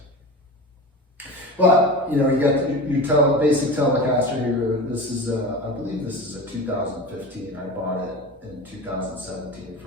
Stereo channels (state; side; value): normal; both; correlation 0.30